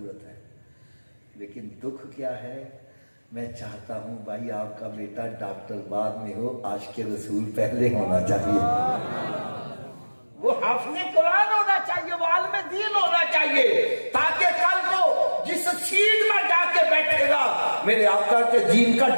ہے. لیکن دکھ کیا ہے، میں چاہتا ہوں بھائی آپ کا بیٹا ڈاکٹر بعد میں ہو، عاشق رسول پہلے ہونا چاہیے. وہ حافظ قرآن ہونا چاہیے، وہ عالم دین ہونا چاہیے، تاکہ کل کو جس سیٹ میں جا کے بیٹھے گا میرے آقا کے دین کا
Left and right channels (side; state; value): both; inverted; correlation -1.00